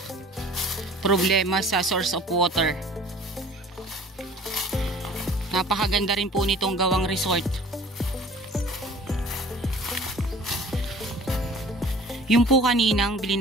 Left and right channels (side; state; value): both; normal; correlation 0.48